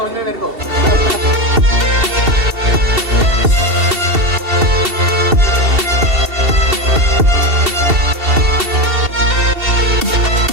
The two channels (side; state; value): left; late; 2.7 ms